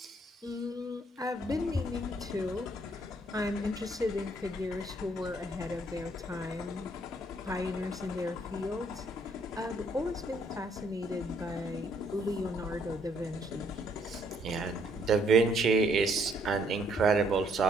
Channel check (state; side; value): normal; both; correlation 0.68